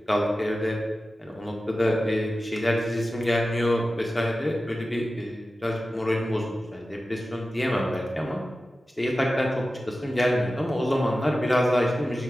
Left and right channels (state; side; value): normal; both; correlation 0.94